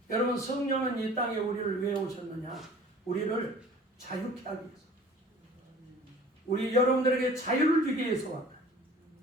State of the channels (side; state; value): both; normal; correlation 0.47